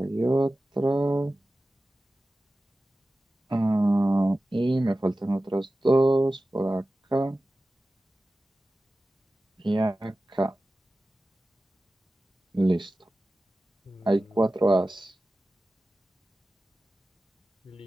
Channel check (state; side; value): normal; both; correlation 0.95